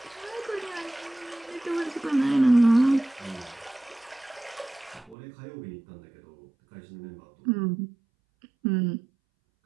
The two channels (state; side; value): drops out; left; at 5.2 s